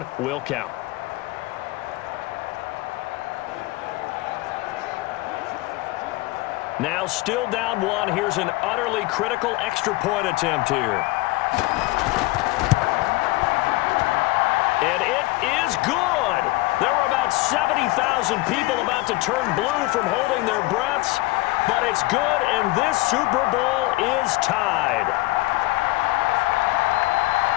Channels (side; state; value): right; quieter; 20.6 dB